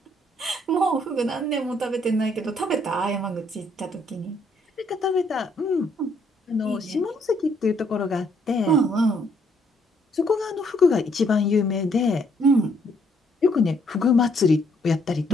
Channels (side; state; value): both; normal; correlation 0.69